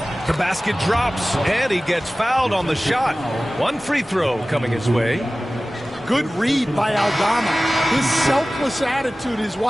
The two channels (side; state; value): both; normal; correlation 0.97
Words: The basket drops, and he gets fouled on the shot. 1 free throw coming his way. Good read by Aldama. His selfless attitude is